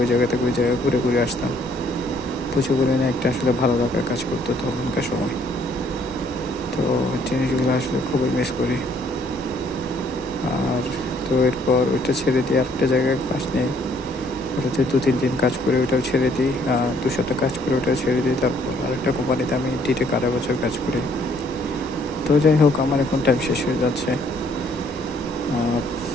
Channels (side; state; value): both; normal; correlation 0.64